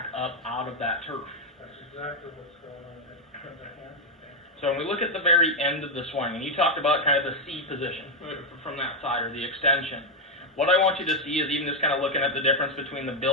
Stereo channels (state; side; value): normal; both; correlation 0.03